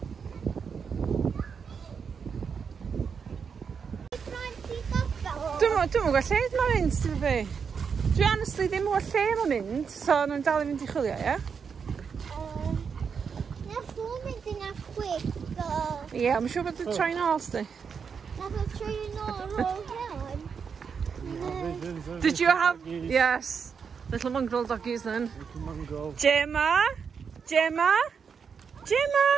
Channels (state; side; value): quieter; left; 6.3 dB